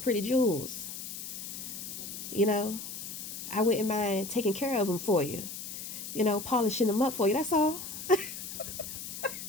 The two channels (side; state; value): left; noise; hiss, 8 dB below the sound